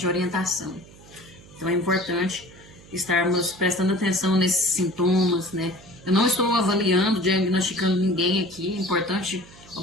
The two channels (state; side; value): noise; right; hum, 22 dB below the sound